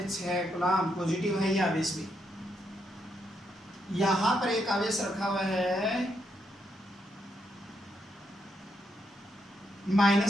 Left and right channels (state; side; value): normal; both; correlation 0.79